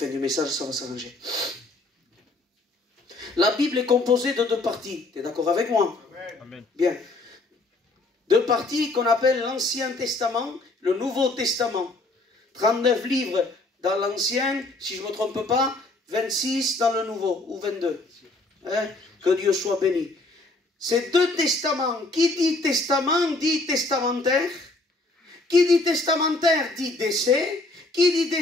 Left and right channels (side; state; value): right; quieter; 3.0 dB